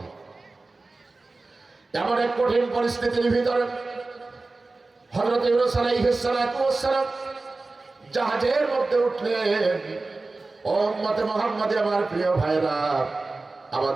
এমন এক কঠিন পরিস্থিতির ভিতরে হযরত ইউনূস আলাইহিস সালাম জাহাজের মধ্যে উঠলেন। ও উম্মতে মুহাম্মাদী, আমার প্রিয় ভাইরা,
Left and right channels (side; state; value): left; quieter; 3.4 dB